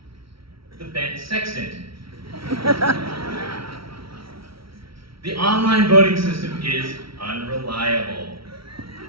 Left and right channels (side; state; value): left; late; 0.75 ms